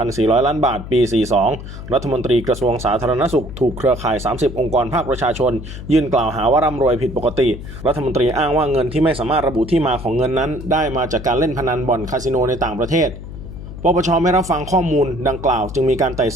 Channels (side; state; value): left; noise; hum, 11 dB below the sound